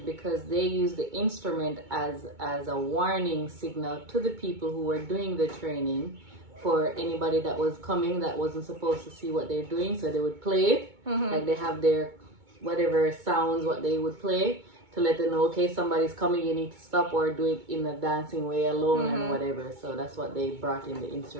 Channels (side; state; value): left; late; 2.2 ms